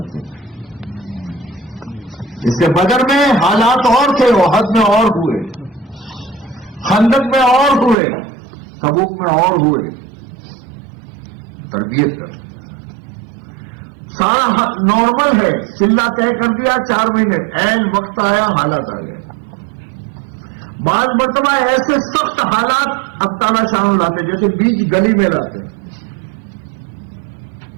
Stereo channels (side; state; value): left; drops out; at 8.0 s